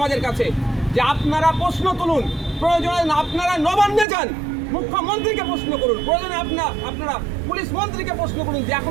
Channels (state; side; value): drops out; left; at 4.0 s